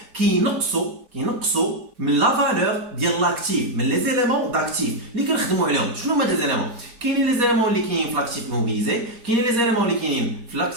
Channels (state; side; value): late; left; 4.2 ms